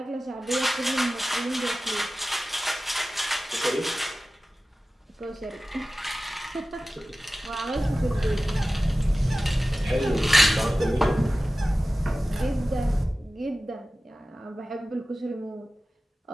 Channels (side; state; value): both; normal; correlation 0.96